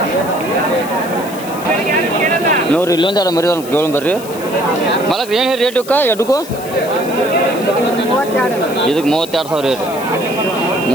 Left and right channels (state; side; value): noise; left; hiss, 15 dB below the sound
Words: ನೋಡ್ರಿ ಇಲ್ಲೊಂದು ಎರಡು ಮರಿ ಕೇಳೋಣ ಬರ್ರಿ ಮಾಲಕ್ರ. ಏನು ರೇಟ್ ಇವಕ್ಕ ಎಡ್ಗೂ? ಇದಕ್ಕೆ 32,000 ರೀ.